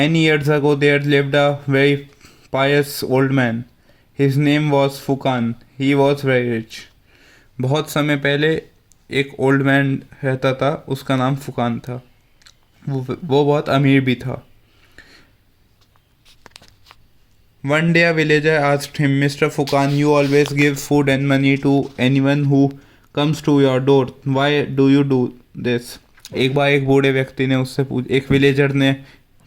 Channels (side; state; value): both; identical; correlation 1.00